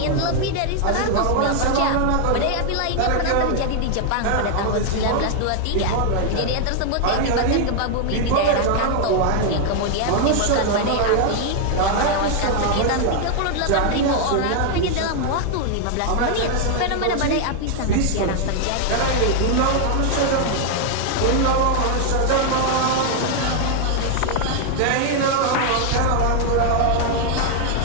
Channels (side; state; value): both; different; correlation 0.00